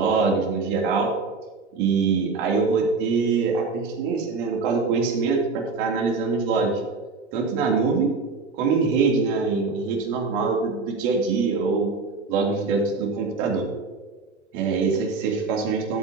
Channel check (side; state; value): left; quieter; 4.3 dB